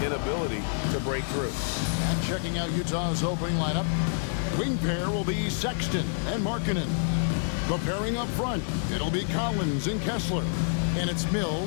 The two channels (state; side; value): silent; right; 60 dB below the other